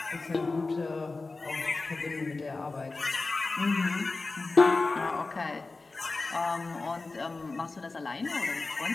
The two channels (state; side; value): quieter; right; 3.6 dB